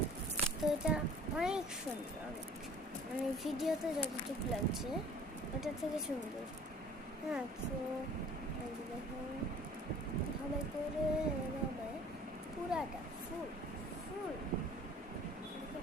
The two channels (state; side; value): normal; both; correlation 0.49